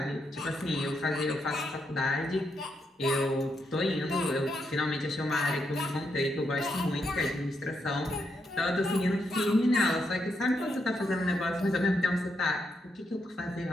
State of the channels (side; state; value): both; normal; correlation 0.81